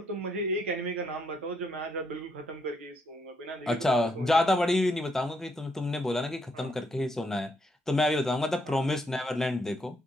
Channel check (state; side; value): normal; both; correlation 0.75